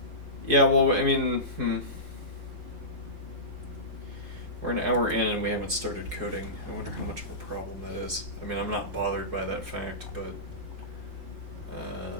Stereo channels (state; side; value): late; left; 4.7 ms